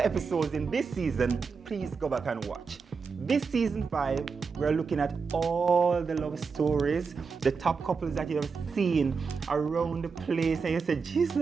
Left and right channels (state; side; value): quieter; left; 5.2 dB